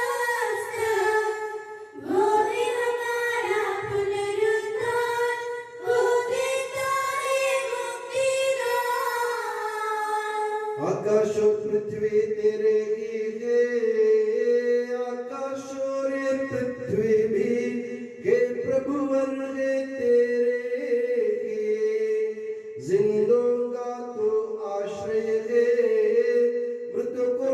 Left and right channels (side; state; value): both; identical; correlation 1.00